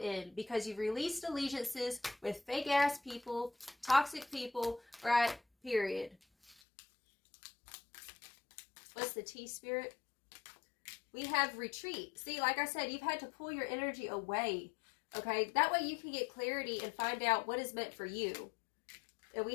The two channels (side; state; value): right; drops out; at 6.6 s